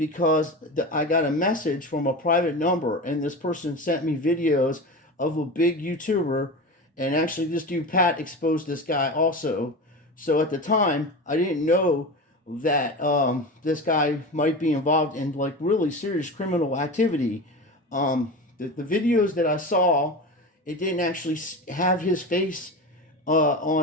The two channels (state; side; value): normal; both; correlation 0.27